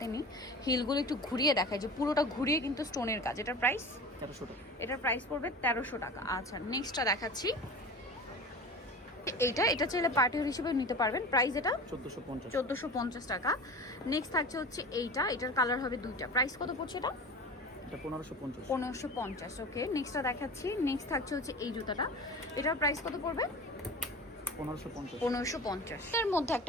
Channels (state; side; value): normal; both; correlation 0.34